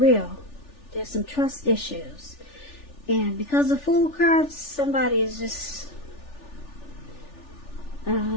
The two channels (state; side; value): late; right; 3.4 ms